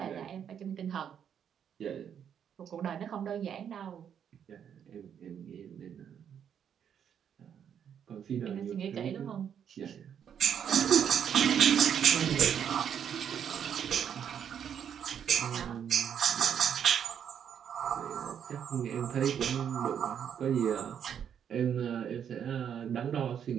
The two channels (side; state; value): left; quieter; 8.5 dB